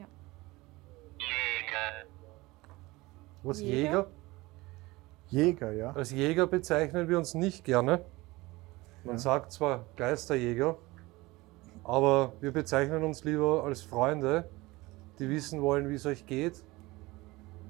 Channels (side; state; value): left; quieter; 21.1 dB